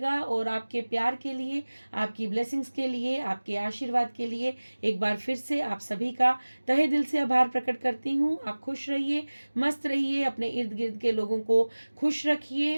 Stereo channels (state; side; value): inverted; both; correlation -1.00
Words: और आपके प्यार के लिए, आपकी ब्लेसिंग्स के लिए, आपके आशीर्वाद के लिए एक बार फिर से आप सभी का तहे दिल से आभार प्रकट करती हूँ। आप खुश रहिए, मस्त रहिए, अपने इर्द गिर्द के लोगों को खुश